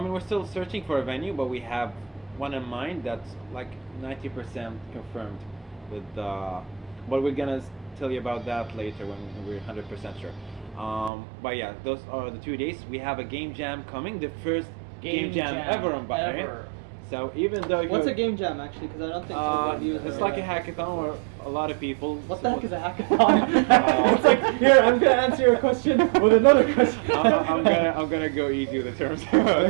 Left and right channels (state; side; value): drops out; left; at 11.1 s